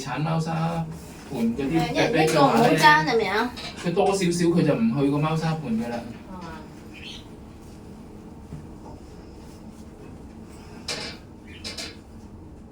貓砂盤嗰啲一人一個唔好爭係咪啊？佢多少少佢就唔去個貓砂盤㗎啦。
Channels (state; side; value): identical; both; correlation 1.00